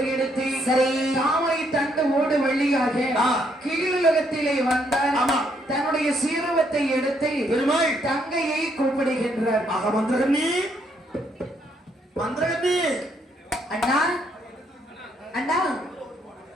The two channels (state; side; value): normal; both; correlation 0.72